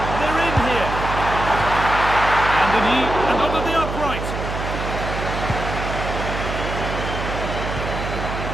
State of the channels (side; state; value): right; noise; hum, 5 dB below the sound